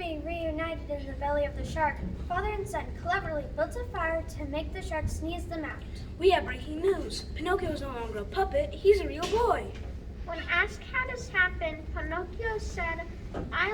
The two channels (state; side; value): identical; both; correlation 1.00